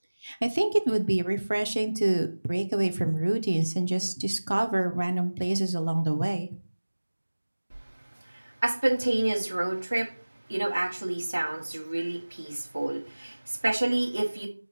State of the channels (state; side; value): inverted; both; correlation -1.00